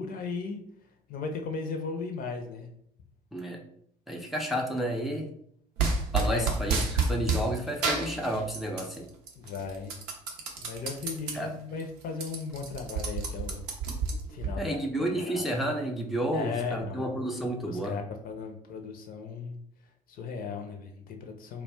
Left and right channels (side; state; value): both; normal; correlation 0.50